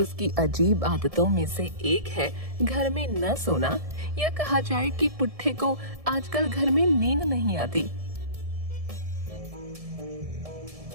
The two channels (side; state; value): left; late; 1.7 ms